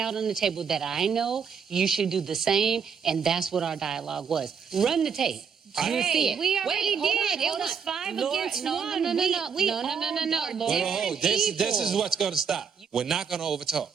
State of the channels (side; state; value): left; quieter; 6.5 dB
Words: on the table that I know. You should do the same. And that's what our dialogue was. Run the tape. You'll see it. We already Wait, did. hold It was on. 5 Lord, against no, 1. No. We all are different This people. is what's going to stop. We're not going to overtalk.